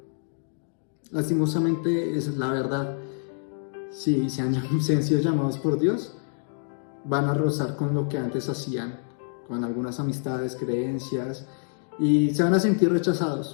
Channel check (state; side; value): silent; right; digital silence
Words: Lastimosamente, esa es la verdad. Si se han sido llamados por Dios, van a rozar con lo que antes hacían, con algunas amistades, creencias, y se van a sentir